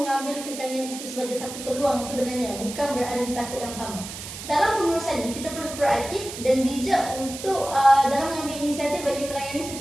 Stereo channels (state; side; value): noise; right; hiss, 10 dB below the sound